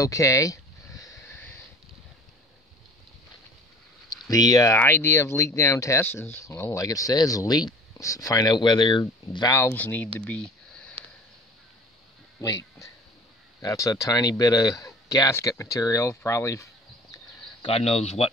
The idea of leak down test is, well, like it says, leak. Find out whether valves need to be leaked. That's a tiny bit of gasket material, probably God knows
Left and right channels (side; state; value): both; normal; correlation 0.44